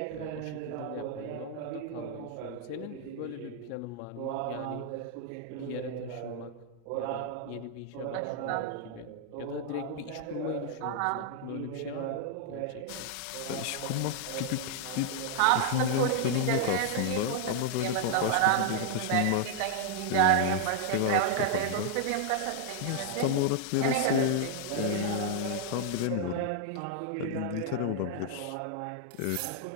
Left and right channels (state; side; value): different; both; correlation 0.00